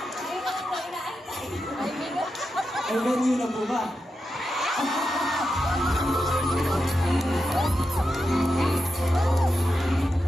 na po, inaantay. Ay, venue na po ba?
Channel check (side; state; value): both; normal; correlation 0.88